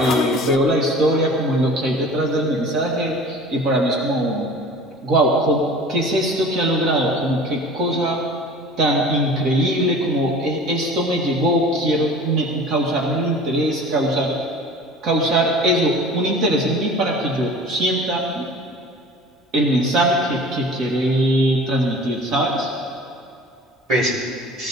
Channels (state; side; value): normal; both; correlation 0.42